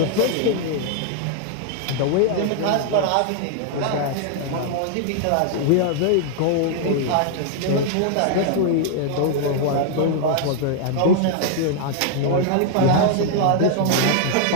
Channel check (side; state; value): both; different; correlation 0.00